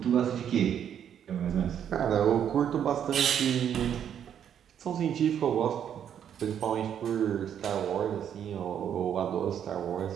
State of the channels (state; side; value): quieter; left; 9.1 dB